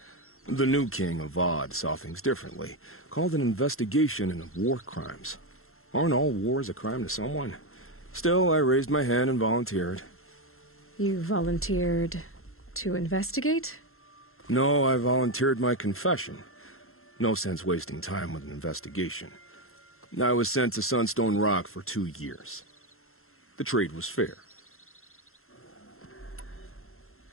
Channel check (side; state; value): right; late; 0.62 ms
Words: The new king of Avad saw things differently. Called an investigation into war crimes. Aren't all wars a crime to someone? Still, I raised my hand and volunteered. You volunteered to investigate? No, I volunteered my confession. No sense wasting time with an investigation. I was sent to Sunstone Rock for 2 years. The trade was fair.